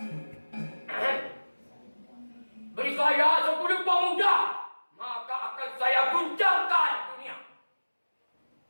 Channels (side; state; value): both; inverted; correlation -1.00